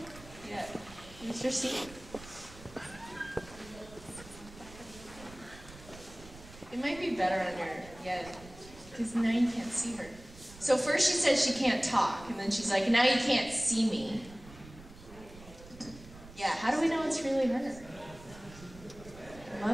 Yeah. Here's your seat. It might be better on your, yeah, because now you can't see her. So first she says she can't talk, and then she's like, now you can't see me. Yeah, how do we know it's really her? I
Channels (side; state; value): right; noise; rumble, 18 dB below the sound